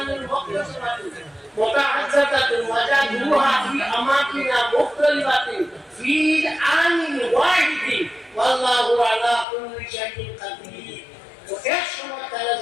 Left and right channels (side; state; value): right; drops out; at 9.5 s